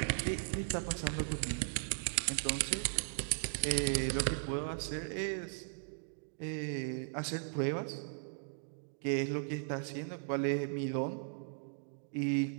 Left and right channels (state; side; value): silent; left; digital silence